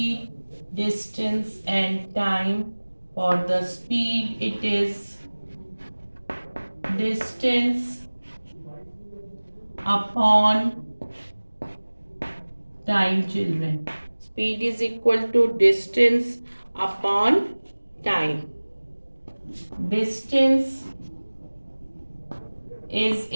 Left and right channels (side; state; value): both; inverted; correlation -1.00